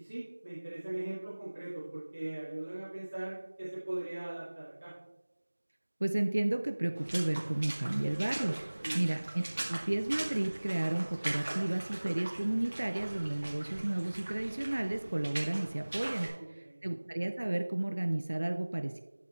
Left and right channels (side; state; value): both; inverted; correlation -1.00